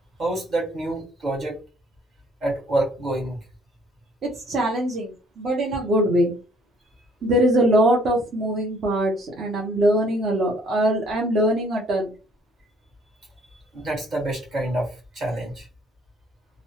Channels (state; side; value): normal; both; correlation 0.61